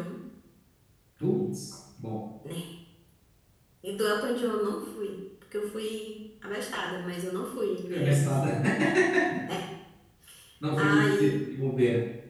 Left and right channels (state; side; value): identical; both; correlation 1.00